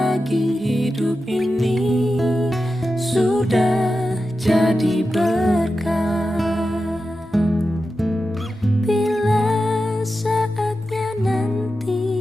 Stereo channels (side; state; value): both; normal; correlation 0.91